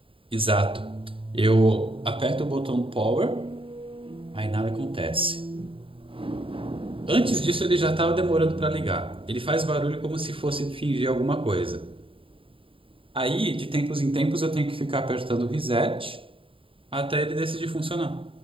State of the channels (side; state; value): left; late; 0.26 ms